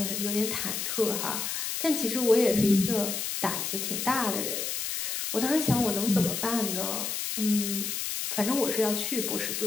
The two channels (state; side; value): noise; left; hiss, 2 dB below the sound